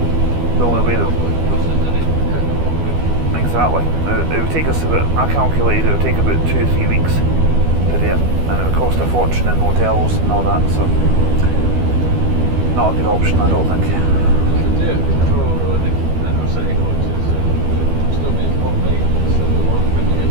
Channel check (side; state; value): left; late; 12 ms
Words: The only way that exactly. It would take us about, I calculated it would take about 2 or 3 weeks to do it, and it would cost a fortune in hotels and all that, so not a good option, I don't think.